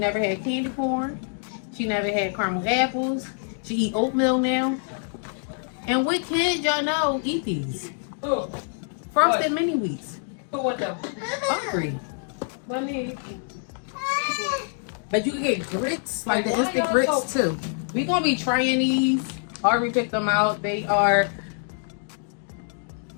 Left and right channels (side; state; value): right; silent; 61 dB below the other